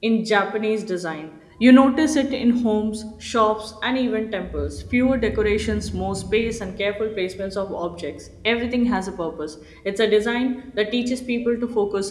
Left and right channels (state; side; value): identical; both; correlation 1.00